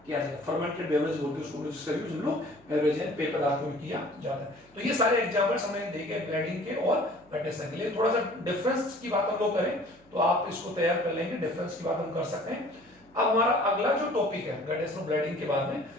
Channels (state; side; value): noise; right; hum, 30 dB below the sound